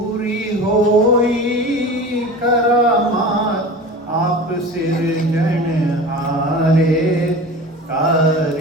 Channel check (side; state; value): both; normal; correlation 0.35